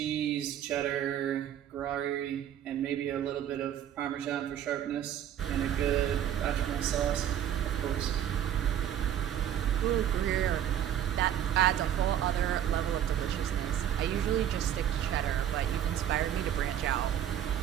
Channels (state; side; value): quieter; left; 10.5 dB